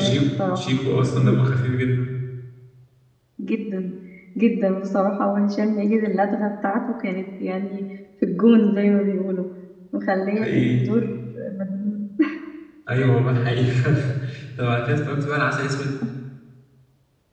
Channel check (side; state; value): both; identical; correlation 1.00